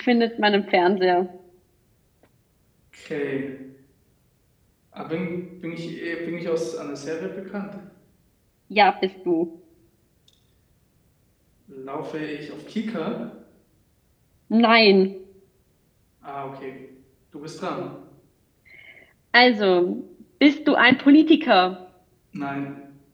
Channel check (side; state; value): both; identical; correlation 1.00